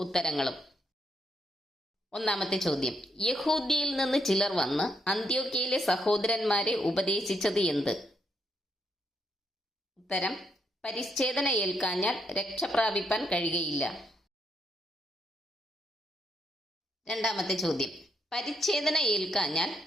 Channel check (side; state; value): both; normal; correlation 0.76